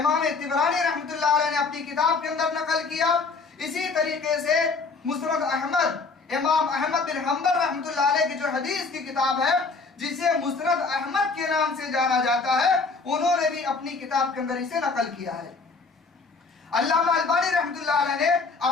طبرانی رحمۃ اللہ علیہ نے اپنی کتاب کے اندر نقل کیا۔ اسی طریقے سے مسند احمد، امام احمد بن حنبل رحمۃ اللہ علیہ کی جو حدیث کی کتاب ہے، جسے مسند احمد کے نام سے جانا جاتا ہے، انہوں نے بھی اپنی کتاب کے اندر اسے نقل کیا ہے۔ علامہ البانی رحمۃ اللہ علیہ نے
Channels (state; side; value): quieter; right; 4.3 dB